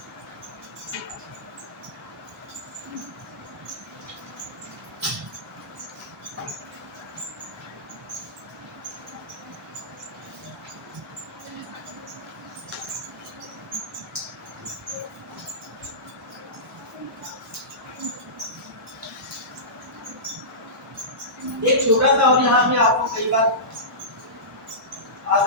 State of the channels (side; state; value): both; normal; correlation -0.20